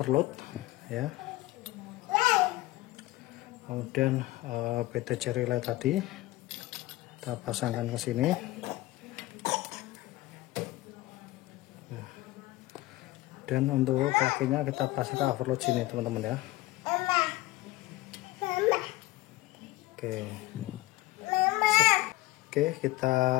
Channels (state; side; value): quieter; right; 18.3 dB